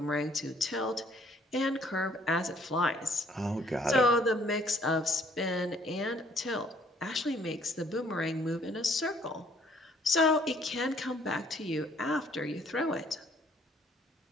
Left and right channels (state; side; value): normal; both; correlation 0.62